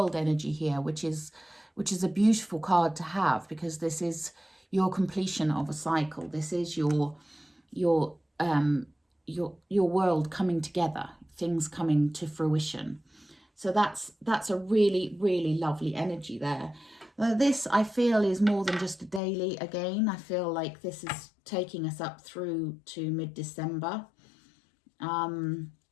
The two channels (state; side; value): drops out; right; at 19.2 s